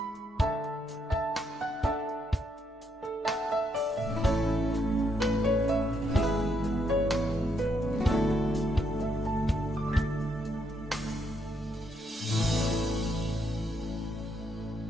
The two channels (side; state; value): both; normal; correlation 0.76